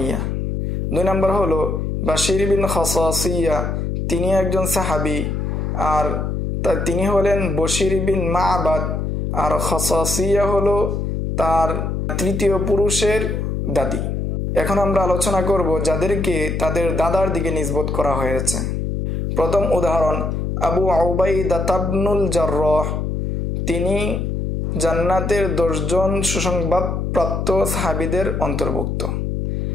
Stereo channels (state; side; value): noise; left; hum, 1 dB below the sound